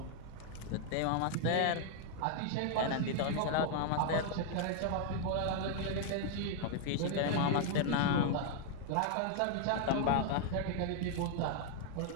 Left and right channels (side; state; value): both; different; correlation 0.00